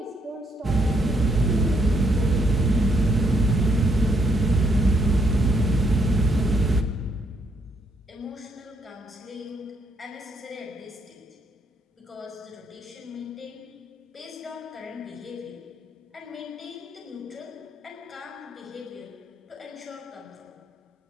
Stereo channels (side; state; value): both; normal; correlation 0.73